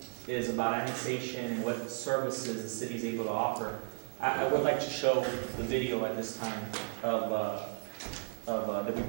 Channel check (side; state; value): left; silent; 55 dB below the other